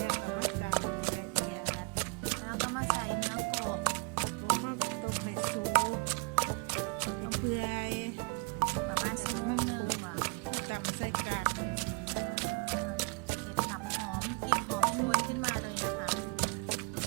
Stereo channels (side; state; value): left; quieter; 31.3 dB